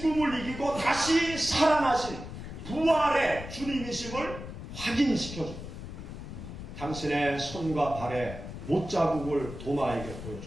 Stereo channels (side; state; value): left; noise; rumble, 10 dB below the sound